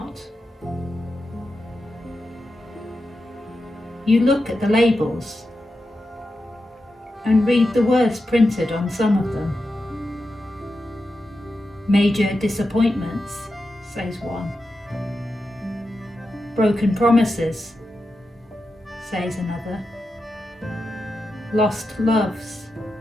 You look at the labels and read the words printed on some of them. Major disappointments, says one. Broken promises, says another. Lost loves,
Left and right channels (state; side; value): normal; both; correlation 0.89